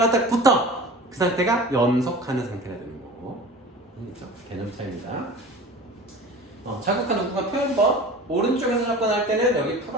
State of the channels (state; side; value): normal; both; correlation 0.38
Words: 딱 붙어. 그 상태가 연속하는 상태가 되는 거고. 그렇죠? 개념 차이입니다. 자극한 우극한 표현법. 오른쪽에서 접근할 때는 여기